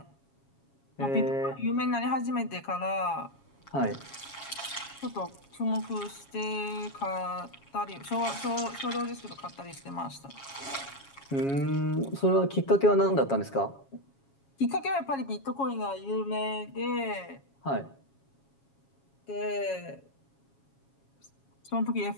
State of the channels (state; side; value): late; right; 7.3 ms